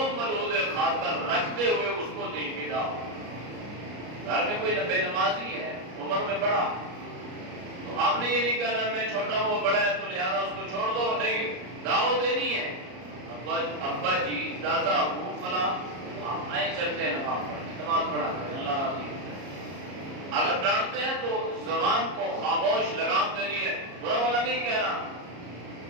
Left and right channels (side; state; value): left; late; 33 ms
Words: ملحوظ خاطر رکھتے ہوئے اس کو دین کی دعوت. گھر میں کوئی بے نمازی ہے، عمر میں بڑا، تو آپ نے یہ نہیں کہنا میں چھوٹا ہوں وہ بڑا ہے تو لہذا اس کو چھوڑ دو. نہیں، دعوت دینی ہے. ابا جی، دادا، ابو، فلاں، آپ آئے چلتے ہیں نماز پڑھا کریں، اللہ راضی ہے. اگر ڈانٹتے ہیں تو زبان کو خاموش لگام دینی ہے، برا والا نہیں کہنا،